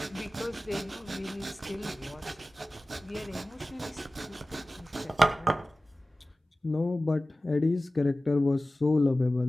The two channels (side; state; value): both; normal; correlation 0.96